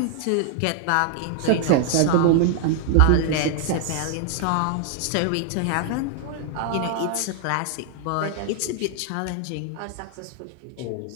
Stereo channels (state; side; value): different; both; correlation -0.01